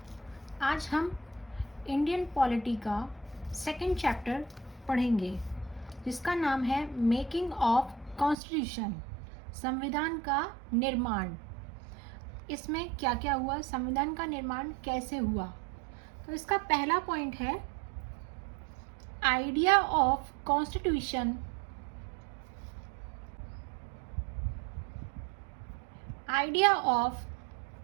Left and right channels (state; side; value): drops out; left; at 8.3 s